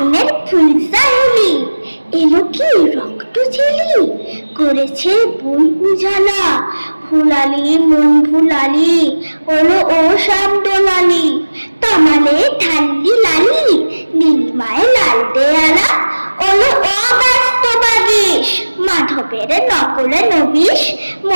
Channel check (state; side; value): inverted; both; correlation -1.00